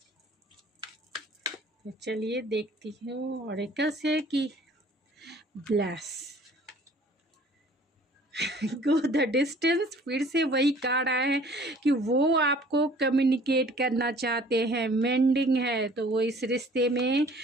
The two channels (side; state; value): both; normal; correlation 0.52